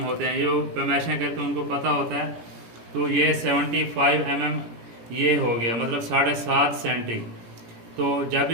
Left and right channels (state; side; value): late; left; 17 ms